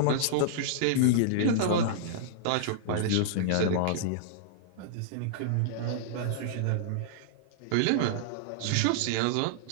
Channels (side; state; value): both; different; correlation -0.02